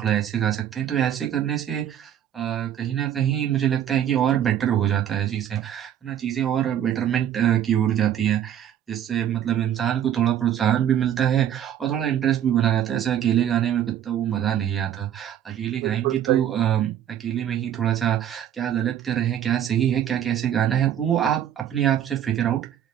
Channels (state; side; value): quieter; left; 10.3 dB